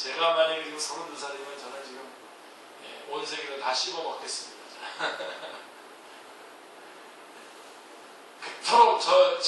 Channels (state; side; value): identical; both; correlation 1.00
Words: 만약에 지금 32살이면 저는 지금 온 세계를 다 씹어 먹겠습니다. 그토록